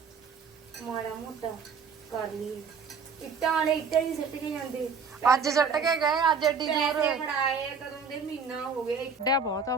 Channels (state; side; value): quieter; left; 5.4 dB